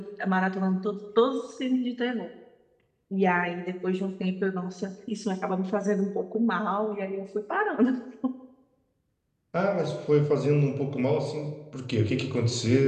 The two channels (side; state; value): both; identical; correlation 1.00